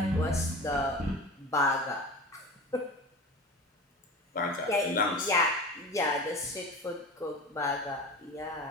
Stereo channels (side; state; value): both; normal; correlation 0.33